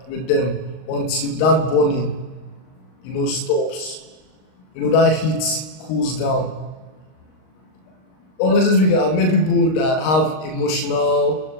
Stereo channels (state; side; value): late; right; 38 ms